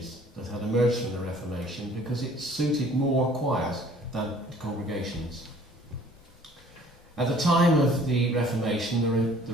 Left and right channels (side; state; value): both; normal; correlation 0.54